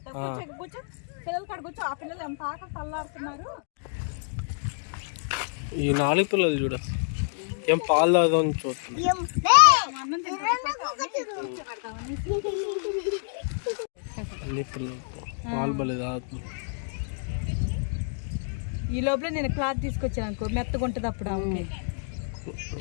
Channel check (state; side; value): silent; right; digital silence